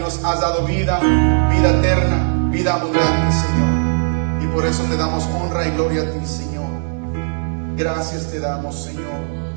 nos has dado vida, vida eterna, vida abundante, Señor. Y por eso te damos honra y gloria a ti, Señor. Gracias te damos, Señor.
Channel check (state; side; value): silent; left; digital silence